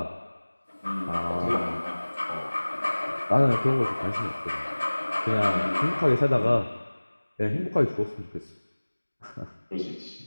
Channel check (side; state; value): both; inverted; correlation -1.00